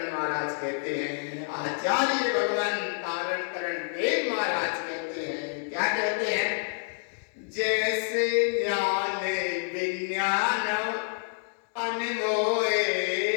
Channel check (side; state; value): right; silent; digital silence